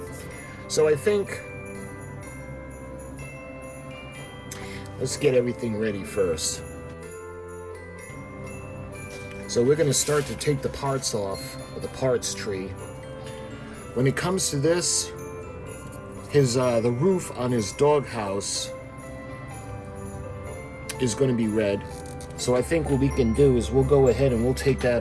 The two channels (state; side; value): identical; both; correlation 1.00